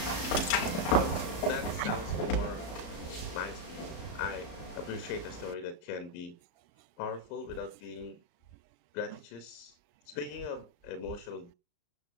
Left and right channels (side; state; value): right; late; 34 ms